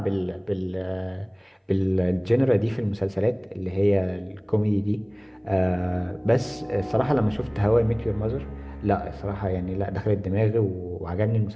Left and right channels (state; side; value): identical; both; correlation 1.00